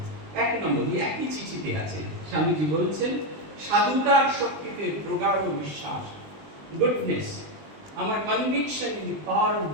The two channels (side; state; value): left; late; 20 ms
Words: 1 নম্বর, একই চিঠিতে আছে, স্বামীজি বলছেন, সাধুতার শক্তিতে প্রগাঢ় বিশ্বাস, গুডনেস, আমার conviction in the power of